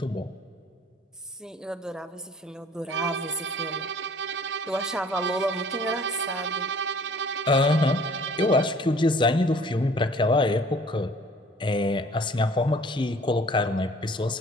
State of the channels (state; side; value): normal; both; correlation 0.52